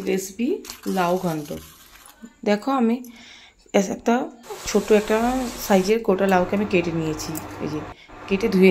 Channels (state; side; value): identical; both; correlation 1.00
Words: রেসিপি, লাউ ঘন্ট। দেখো আমি একটা ছোট্ট একটা সাইজের গোটা লাউকে আমি কেটে নিয়েছি, এই যে কেটে ধুয়ে